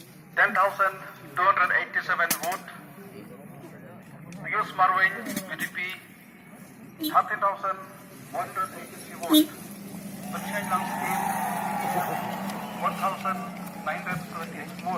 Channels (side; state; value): both; identical; correlation 1.00